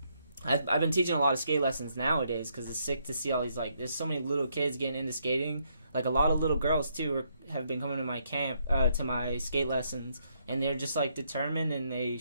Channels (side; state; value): both; inverted; correlation -0.74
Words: I've been teaching a lot of skate lessons nowadays because it's sick to see all these, like, there's so many little kids getting into skating. Like, a lot of little girls, too, have been coming to my camp, to my skate lessons, and they're just, like, determined and they